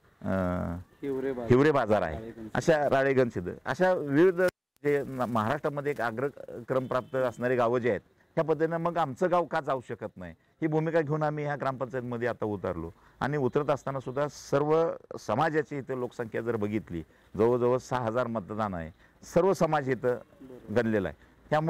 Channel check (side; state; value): both; identical; correlation 1.00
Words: हिवरे बाजार आहे, अशा राळेगणसिद्ध, अशा विविध जे महाराष्ट्रामध्ये एक अग्रक्रम प्राप्त असणारी गावं जी आहेत, ह्या पद्धतीनं मग आमचं गाव का जाऊ शकत नाही ही भूमिका घेऊन आम्ही ह्या ग्रामपंचायतमध्ये आता उतरलो. आणि उतरत असताना सुद्धा सर्व समाजाची इथं लोकसंख्या जर बघितली, जवळजवळ 6000 मतदान आहे, सर्व समाज इथं गणलेला आहे.